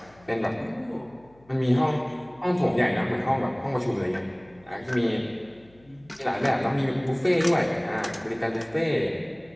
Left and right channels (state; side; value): noise; left; hum, 29 dB below the sound